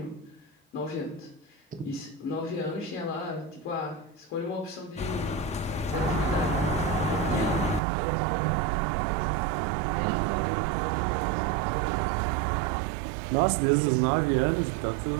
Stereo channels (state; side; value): drops out; left; at 7.8 s